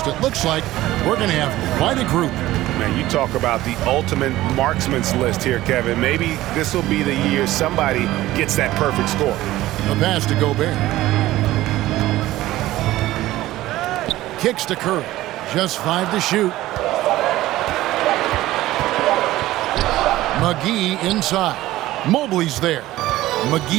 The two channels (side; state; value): left; quieter; 16.1 dB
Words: It looks like we're going to have quite a group. Man, you talk about the ultimate marksman's list here, Kevin. Maybe this will be the year somebody gets that perfect score. A pass to Gobert. Kicks to Curry. Just 5 to shoot. McGee inside. Mobley's there.